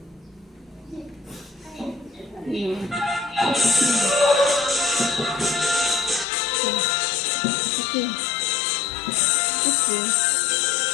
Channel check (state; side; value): drops out; right; at 6.2 s